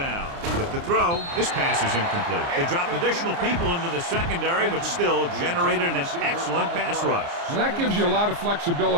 With the throw, this pass is incomplete. They dropped additional people into the secondary, but still generated an excellent pass rush. And that gives you a lot of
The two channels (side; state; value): left; late; 29 ms